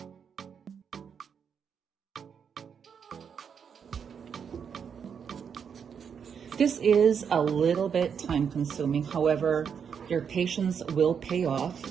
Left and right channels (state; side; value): quieter; left; 7.1 dB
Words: This is a little bit time consuming. However, your patience will pay off.